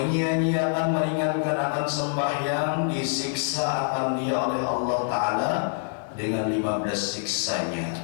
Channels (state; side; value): silent; right; digital silence